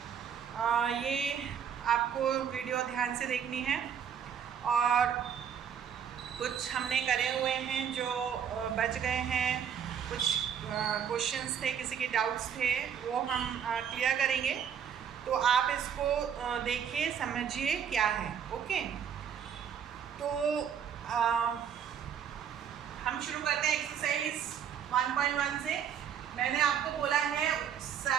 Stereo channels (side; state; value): left; quieter; 8.3 dB